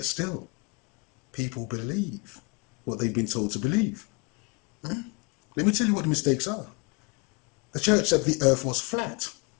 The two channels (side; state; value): right; quieter; 30.3 dB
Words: still, people believe what they've been told to believe. Let me tell you what the mistakes are. The church said the earth was flat.